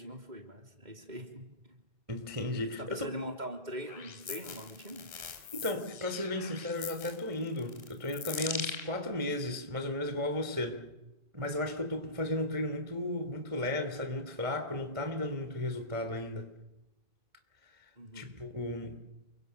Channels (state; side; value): late; left; 1.7 ms